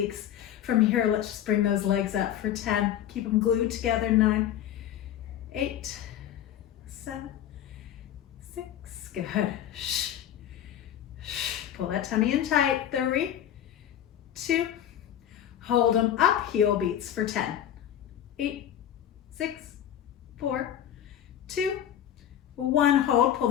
From here, let's just bring those legs up for 10. Keep them glued together. 9, 8, 7, 6. Good. Shh. Shh. Pull that tummy in tight. 3, 2. Hold them up. Heel beats for 10. 8, 6, 4, 2, 1. Hold, pull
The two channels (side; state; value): right; quieter; 10.6 dB